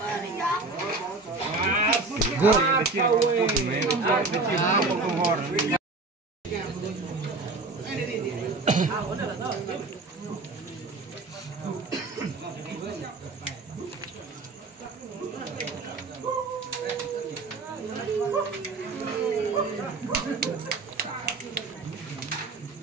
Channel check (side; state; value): left; quieter; 3.5 dB